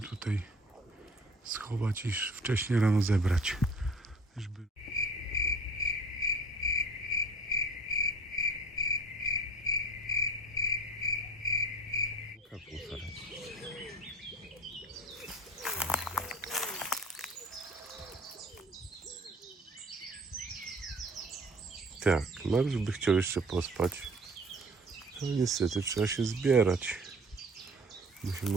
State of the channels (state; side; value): normal; both; correlation 0.46